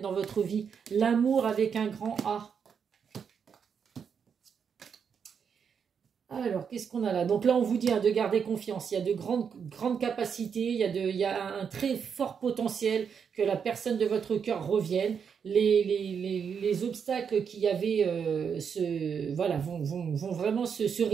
votre vie. L'amour avec un grand A. Alors, qu'est-ce qu'on a là? Donc là, on vous dit de garder confiance. Il y a de grandes capacités. Il y a un très fort potentiel que la personne de votre cœur revienne. Les obstacles qu'il y avait vont vraiment se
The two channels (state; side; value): quieter; left; 6.9 dB